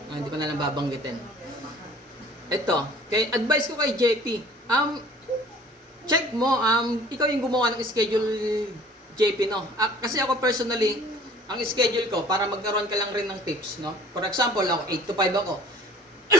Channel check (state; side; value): normal; both; correlation 0.50